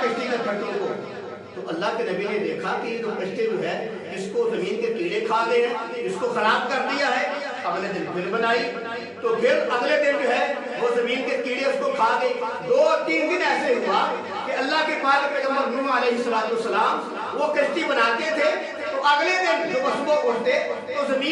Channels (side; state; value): both; identical; correlation 1.00